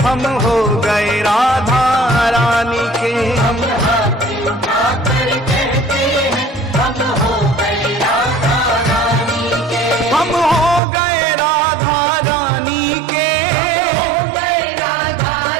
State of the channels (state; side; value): drops out; left; at 10.8 s